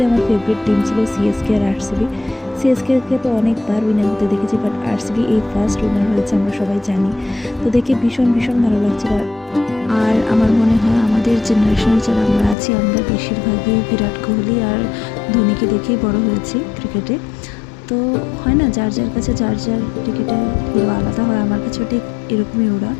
আমার ফেভারিট টিম ছিল সিএসকে আর আরসিবি। সিএসকে তো অনেকবার উইনার হতে দেখেছি, বাট আরসিবি এই ফার্স্ট উইনার হয়েছে, আমরা সবাই জানি। তো দেখে ভীষণ ভীষণ ভালো লাগছিল। আর আমার মনে হয় আমাদের জেনারেশনের যারা আমরা আছি, আমরা বেশিরভাগই বিরাট কোহলি আর ধোনিকে দেখেই বড় হয়েছি ক্রিকেটে। তো হয় না, যার যার কাছে যার যার ক্রিকেটের হিরো আলাদা হয়, আমার কাছেও ঠিক এরকমই ওরা।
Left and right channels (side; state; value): right; drops out; at 12.6 s